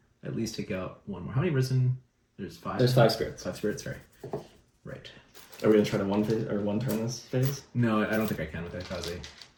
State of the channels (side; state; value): both; identical; correlation 1.00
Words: at least take out 1 more. How many risen? There's 5. There's 5 spirits. 5 spirits, sorry. Right. Are we gonna try to one turn this phase? No, I don't think I can with that Kaze.